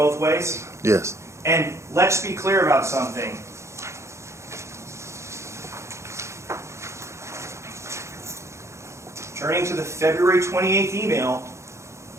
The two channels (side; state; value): left; late; 0.14 ms